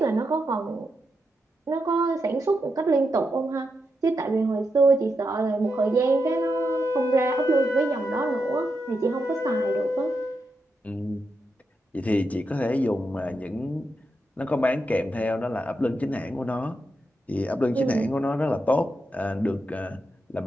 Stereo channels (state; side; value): normal; both; correlation 0.85